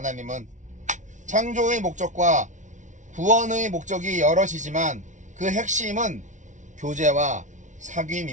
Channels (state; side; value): late; left; 0.36 ms